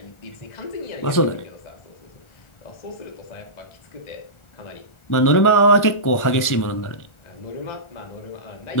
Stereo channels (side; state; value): right; late; 1.4 ms